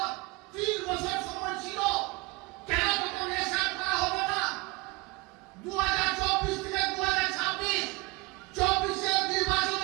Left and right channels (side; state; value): left; quieter; 23.7 dB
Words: 3 বছর সময় ছিল, কেন তখন এসআইআর করা হলো না? 2024 থেকে 2026 24